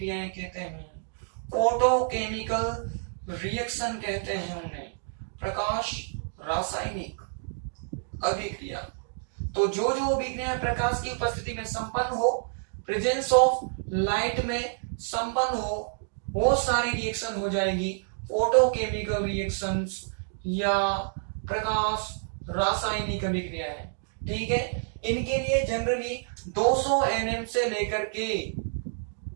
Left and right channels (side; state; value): left; silent; digital silence